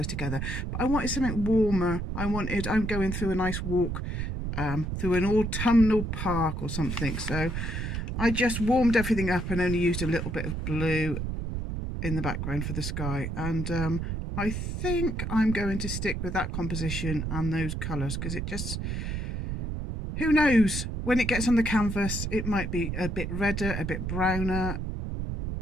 together, but I wanted something warmer. I'm going through a nice walk through an autumnal park or something. So I just warmed everything up and only used a little bit of blue in the background for the sky. And I think I'm going to stick with that composition and those colours, because it just, who knows, when it gets on the canvas, it might be a bit redder, a bit browner.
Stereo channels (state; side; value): noise; right; rumble, 3 dB below the sound